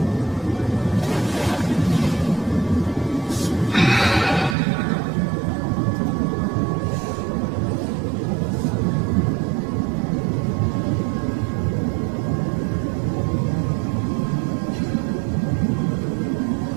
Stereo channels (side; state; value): left; drops out; at 4.5 s